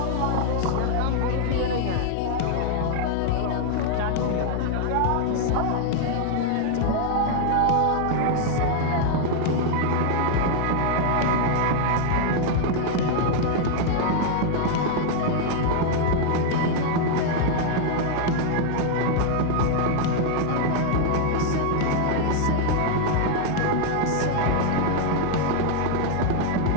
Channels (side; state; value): both; different; correlation 0.00